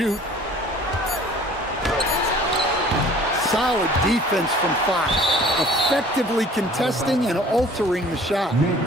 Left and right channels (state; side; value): normal; both; correlation 0.50